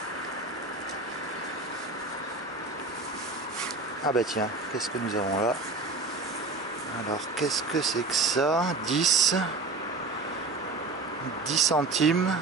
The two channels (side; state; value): left; quieter; 3.5 dB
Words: Ah bah tiens, qu'est-ce que nous avons là? Alors qu'est-ce que c'est que ça? 10 centimes.